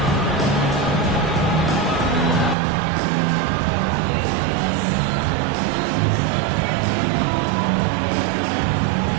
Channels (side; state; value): left; drops out; at 2.6 s